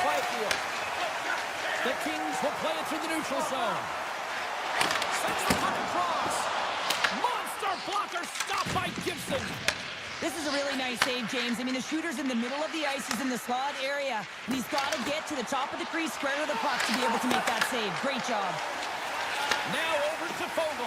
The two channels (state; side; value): identical; both; correlation 1.00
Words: Byfield. The Kings will play it through the neutral zone. Sends the puck across. Monster blocker stopped by Gibson. This is a really nice save, James. I mean, the shooter's in the middle of the ice. He's in the slot area, and he's got to get to the top of the crease, square to the puck to be able to make that save. Great job. Now over to